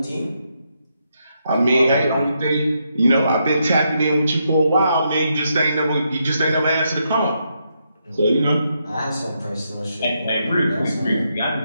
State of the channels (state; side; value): inverted; both; correlation -0.80